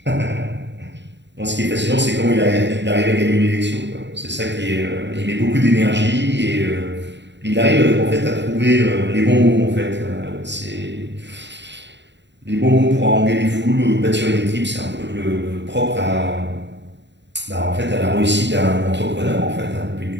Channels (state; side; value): late; left; 0.52 ms